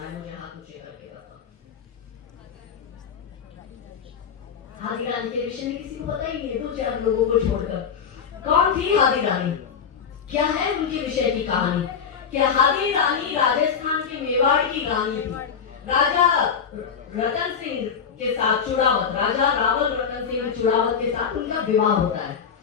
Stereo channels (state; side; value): quieter; right; 6.9 dB